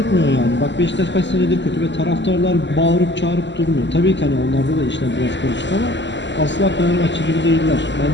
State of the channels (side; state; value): right; late; 0.53 ms